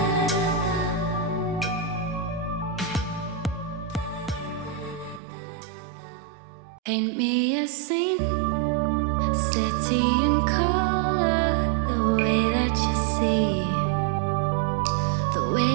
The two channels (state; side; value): drops out; left; at 5.2 s